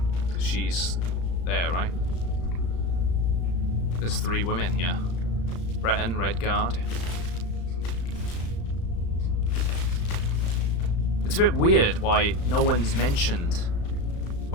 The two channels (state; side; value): late; right; 35 ms